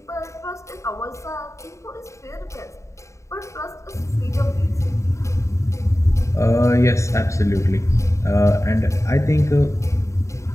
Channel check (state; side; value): late; right; 0.14 ms